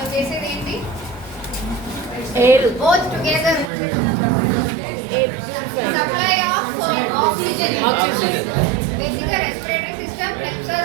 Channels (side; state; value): left; drops out; at 3.7 s